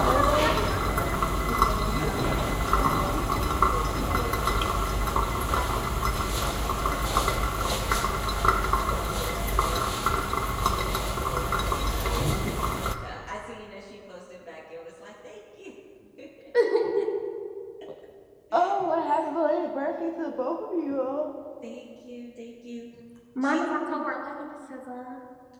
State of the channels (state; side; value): identical; both; correlation 1.00